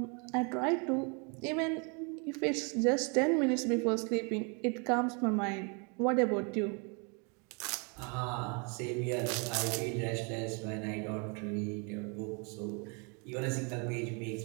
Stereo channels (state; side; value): quieter; left; 34.4 dB